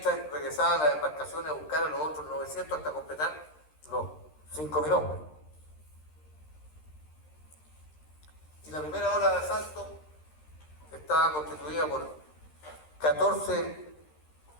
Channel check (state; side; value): late; right; 13 ms